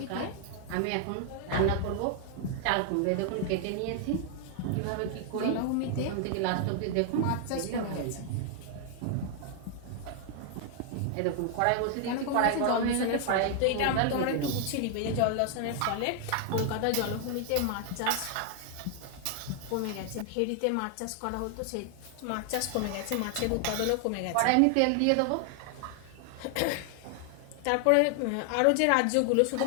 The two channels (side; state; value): both; different; correlation 0.00